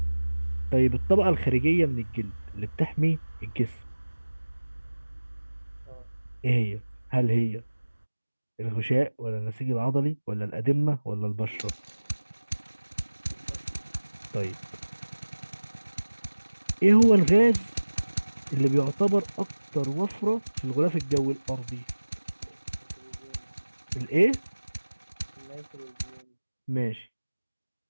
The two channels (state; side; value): inverted; both; correlation -1.00